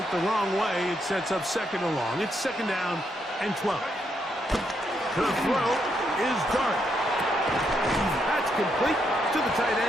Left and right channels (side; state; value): both; normal; correlation 0.78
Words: the wrong way. It sets up 2nd and long. It's 2nd down and 12. The throw is Dart. That's complete to the tight